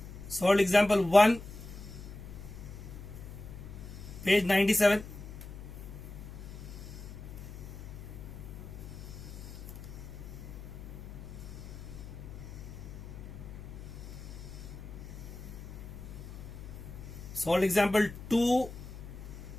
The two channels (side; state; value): left; noise; hum, 11 dB below the sound